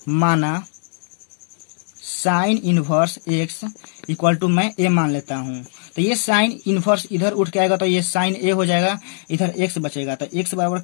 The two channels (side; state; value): right; silent; digital silence